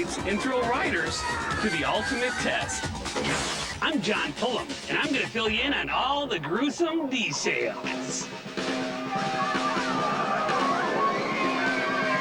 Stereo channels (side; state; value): both; identical; correlation 1.00